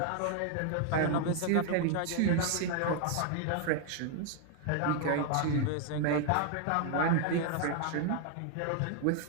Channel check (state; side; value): different; both; correlation 0.00